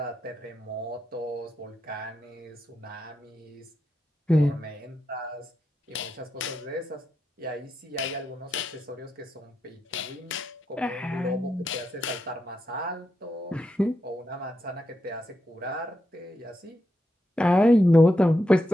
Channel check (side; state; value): both; normal; correlation 0.85